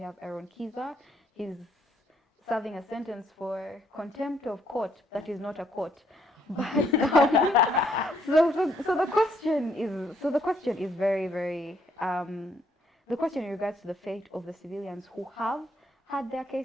have Aaron Kiza. He's serving a sentence for contempt of court that is not a court. But so the question is very, very the question in regards to the fate of the civilians who have had their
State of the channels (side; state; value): both; normal; correlation 0.69